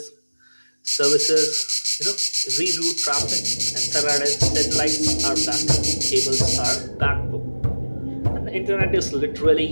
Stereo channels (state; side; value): inverted; both; correlation -1.00